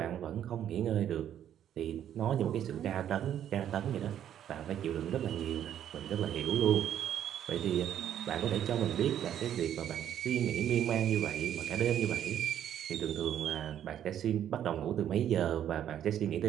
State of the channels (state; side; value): quieter; left; 10.4 dB